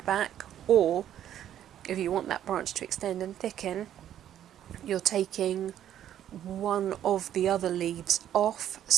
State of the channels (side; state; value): left; quieter; 10.9 dB